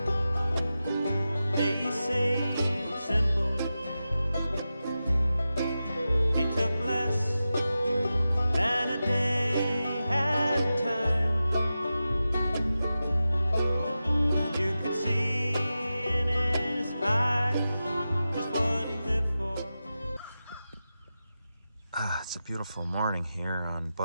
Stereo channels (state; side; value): inverted; both; correlation -0.92